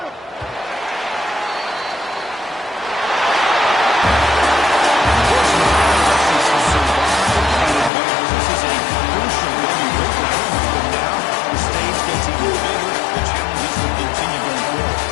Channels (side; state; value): right; drops out; at 7.9 s